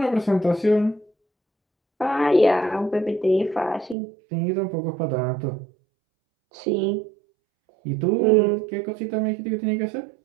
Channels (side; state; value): left; drops out; at 4.0 s